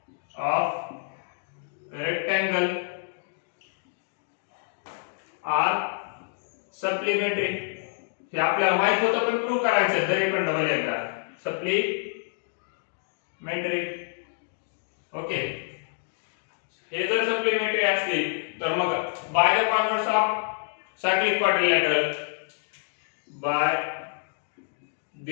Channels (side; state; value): right; silent; digital silence